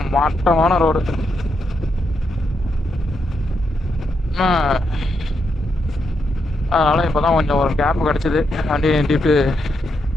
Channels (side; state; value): both; normal; correlation 0.81